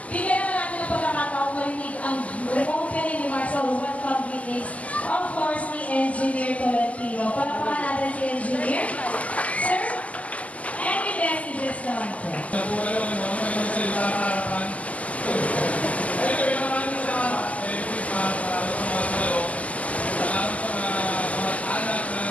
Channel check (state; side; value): late; right; 0.071 ms